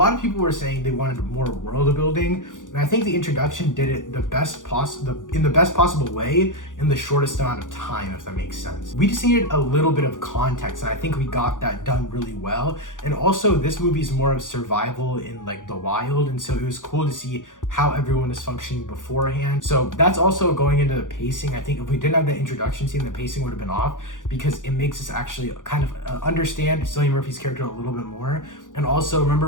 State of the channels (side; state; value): right; late; 0.88 ms